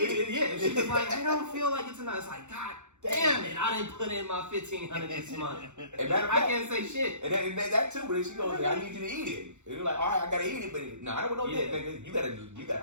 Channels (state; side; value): late; left; 0.84 ms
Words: it. Yeah. She's I don't feel like it's enough. It's God damn it, I didn't put in my $1,500 this month. I can't say shit. And that too, but then she goes, I need you to eat it. And you're all right, I gotta eat it, but no, I don't want no dick, nigga. You gotta.